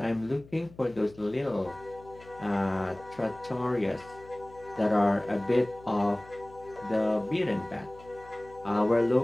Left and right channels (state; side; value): noise; left; hum, 22 dB below the sound